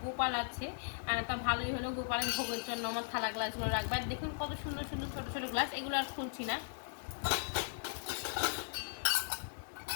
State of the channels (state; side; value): silent; right; 53 dB below the other